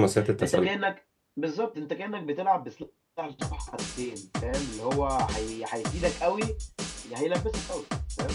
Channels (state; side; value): identical; both; correlation 1.00